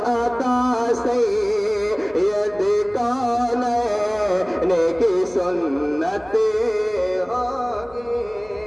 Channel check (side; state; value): left; noise; hum, 24 dB below the sound